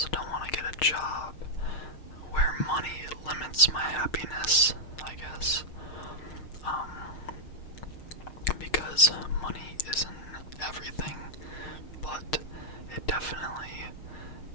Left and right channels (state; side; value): late; right; 6.5 ms